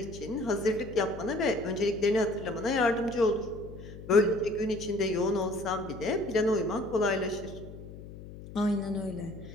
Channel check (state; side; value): noise; left; hum, 14 dB below the sound